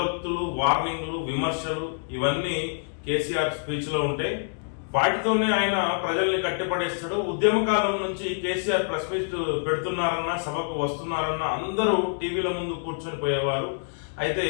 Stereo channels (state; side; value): silent; right; digital silence